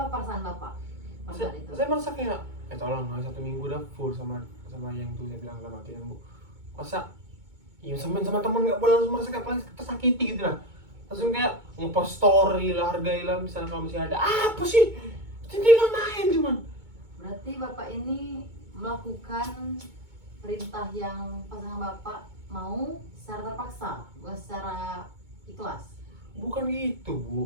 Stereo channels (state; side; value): late; left; 2.2 ms